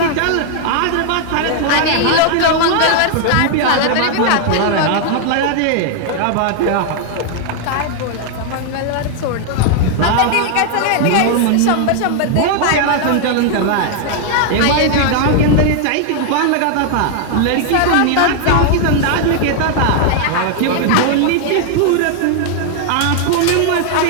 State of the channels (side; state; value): both; different; correlation 0.00